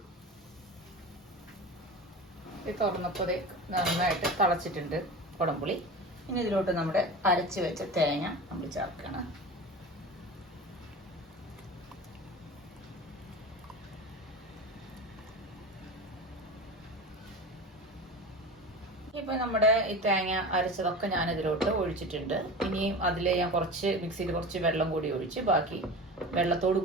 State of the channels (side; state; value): both; normal; correlation 0.32